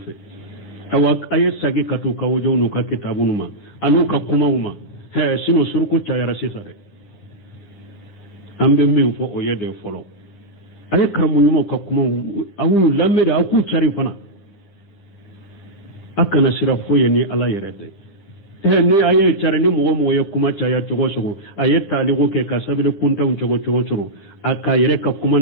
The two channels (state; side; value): late; right; 10 ms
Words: awa aye sagi katu ka wojo nu ka kitabu numa anu ka kuma uma he sino surku chayara sisa de ambe min fo o yede folo aye karamu nyuma ka kuma awu lamme da aku chari fana akana sira fo ye ni ala yerede he ni aye chari ni mo ye kuma chaya chogo chogo aye taligo ke ka sabile kunta un chogo chogo aka yere ka kuma